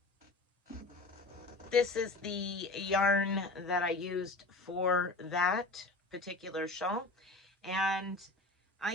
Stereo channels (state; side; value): quieter; right; 3.0 dB